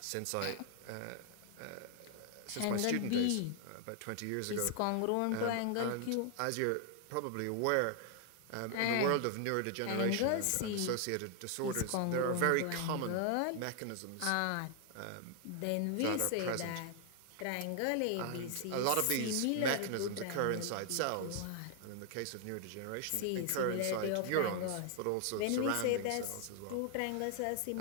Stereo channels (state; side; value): different; both; correlation 0.00